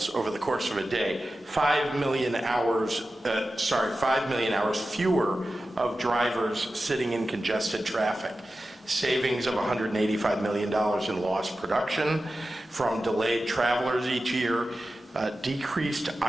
over the course of a day. 5 million hours fewer of drivers sitting in congested traffic. Savings of $185 million in lost production from delayed travelers each year, decreased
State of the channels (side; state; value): both; normal; correlation 0.93